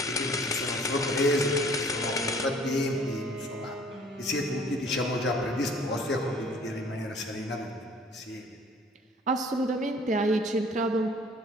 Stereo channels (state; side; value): normal; both; correlation 0.53